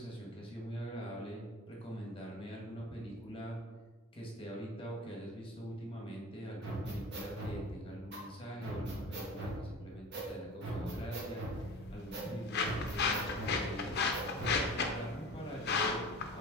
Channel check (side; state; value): both; normal; correlation 0.37